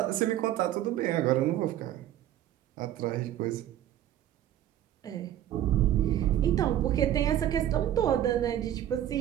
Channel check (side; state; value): left; quieter; 12.0 dB